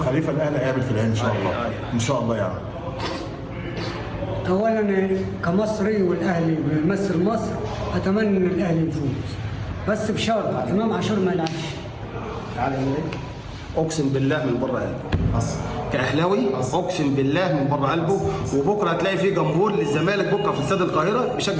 خليفه الاهلي هيقابل في العين ان شاء الله. ان شاء الله يعني. اولا كمصري والاهلي بيمثل مصر اتمنى ان الاهلي يفوز، بس بشرط امام عاشور ما يلعبش. اقسم بالله من بره قلبي كاهلاوي، اقسم بالله من بره قلبه. وبكره هتلاقي في جمهور للزمالك بكره في استاد القاهره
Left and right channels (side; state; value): both; identical; correlation 1.00